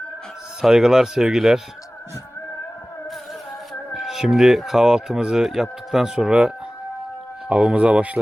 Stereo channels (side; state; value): both; normal; correlation 0.97